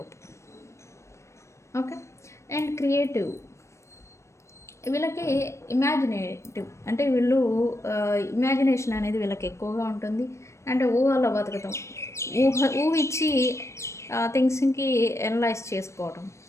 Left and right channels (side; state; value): right; late; 0.14 ms